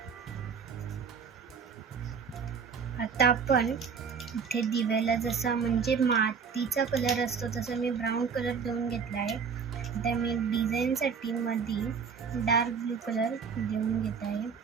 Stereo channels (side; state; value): left; quieter; 6.2 dB